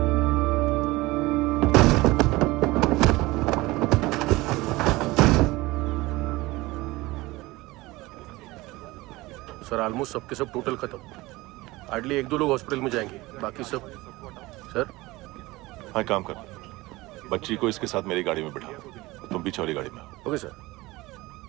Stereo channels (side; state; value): left; quieter; 20.4 dB